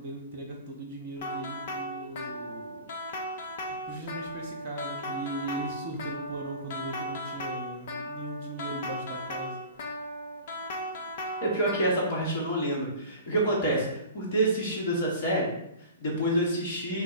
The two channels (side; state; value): both; inverted; correlation -0.39